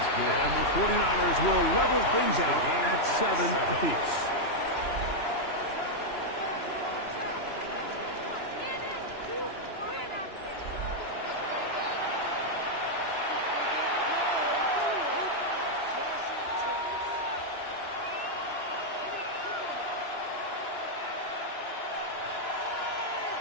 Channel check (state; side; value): late; right; 2.9 ms